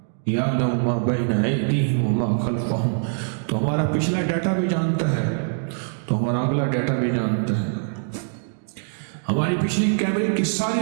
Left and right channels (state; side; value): silent; left; digital silence